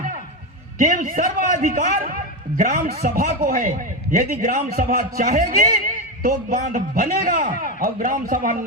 कि सर्वाधिकार ग्राम सभा को है। यदि ग्राम सभा चाहेगी तो बांध बनेगा, और ग्राम सभा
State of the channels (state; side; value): normal; both; correlation 0.13